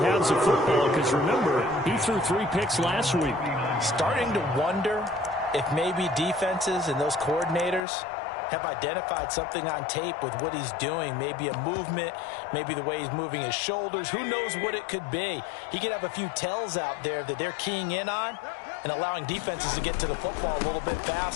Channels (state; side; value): drops out; right; at 7.8 s